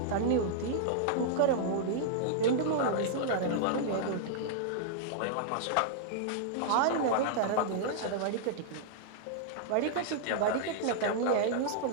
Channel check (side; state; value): both; different; correlation -0.02